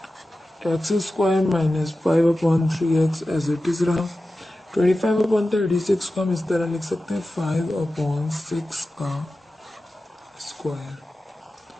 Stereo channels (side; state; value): both; normal; correlation 0.94